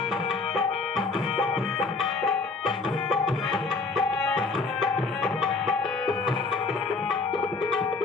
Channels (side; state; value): right; quieter; 4.1 dB